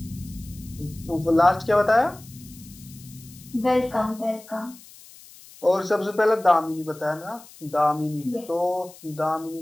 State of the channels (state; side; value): noise; left; hiss, 21 dB below the sound